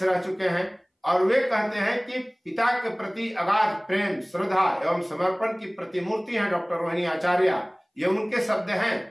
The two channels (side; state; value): both; identical; correlation 1.00